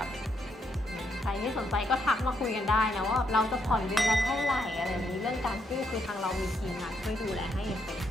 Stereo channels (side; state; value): both; normal; correlation 0.77